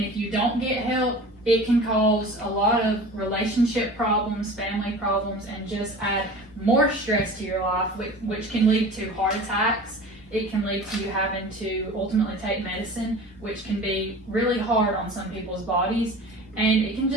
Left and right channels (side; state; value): both; normal; correlation 0.39